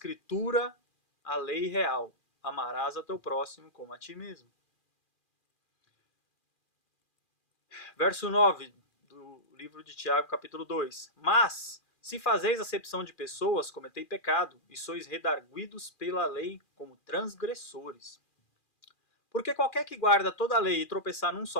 a lei real. Amarás a teu próximo como a ti mesmo. Verso 9 do livro de Tiago, capítulo 2. Mas, se fazeis acepção de pessoas, cometei pecado, e sois redarguidos pela lei como transgressores. Porque qualquer que guarda toda a lei e tropeçar num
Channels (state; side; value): late; right; 2.4 ms